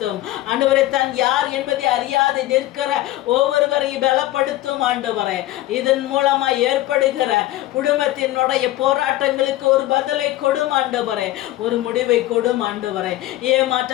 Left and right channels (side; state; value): right; quieter; 15.7 dB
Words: ஆண்டவரை. தான் யார் என்பதை அறியாது நிற்கிற ஒவ்வொருவரையும் பலப்படுத்தும் ஆண்டவரே. இதன் மூலமா ஏற்படுகிற குடும்பத்தினுடைய போராட்டங்களுக்கு ஒரு பதிலை கொடும் ஆண்டவரே, ஒரு முடிவை கொடும் ஆண்டவரே.